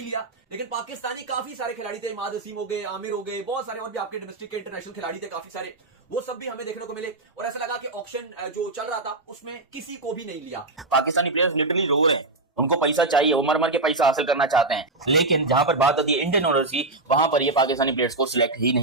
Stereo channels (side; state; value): left; quieter; 3.1 dB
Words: लिया। लेकिन पाकिस्तानी काफी सारे खिलाड़ी थे, इमाद वसीम हो गए, आमिर हो गए, बहुत सारे और भी आपके डोमेस्टिक के इंटरनेशनल खिलाड़ी थे काफी सारे, वो सब भी हमें देखने को मिले और ऐसा लगा कि ऑक्शन जो चल रहा था उसमें किसी को भी नहीं लिया। पाकिस्तानी प्लेयर्स लिटरली रो रहे हैं, उनको पैसा चाहिए, वो मर मर के पैसा हासिल करना चाहते हैं, लेकिन जहां पर बात आती है इंडियन ओनर्स की, वहां पर ये पाकिस्तानी प्लेयर्स को सिलेक्ट ही